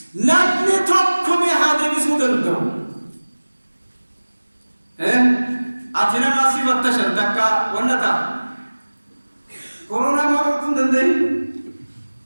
لابني توقمي هادمي سودندو أتنا ما سيبت تشر دكا ونتا كورونا ما أكون دندي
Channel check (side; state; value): both; inverted; correlation -1.00